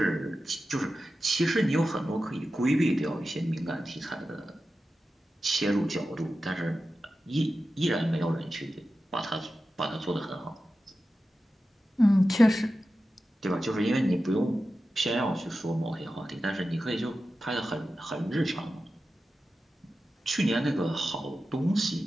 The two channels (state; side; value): normal; both; correlation 0.93